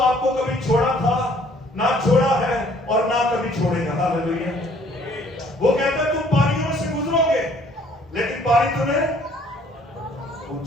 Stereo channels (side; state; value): both; normal; correlation 0.60